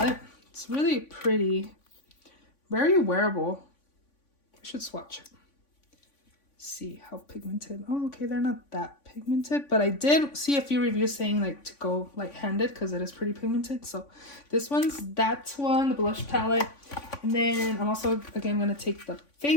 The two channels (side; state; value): right; late; 3.5 ms